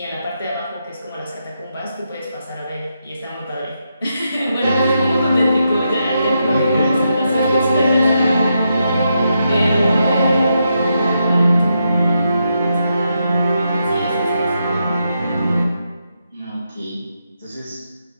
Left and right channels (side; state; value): both; inverted; correlation -0.83